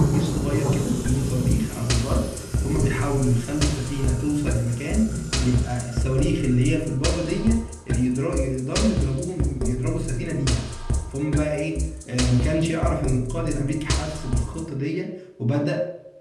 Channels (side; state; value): both; identical; correlation 1.00